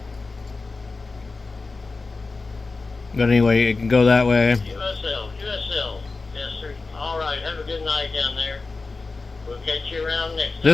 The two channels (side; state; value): right; quieter; 3.8 dB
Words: But anyway, it can go that way. USL. Yes, sir. All right. Have a good night down there. We'll catch you around next time.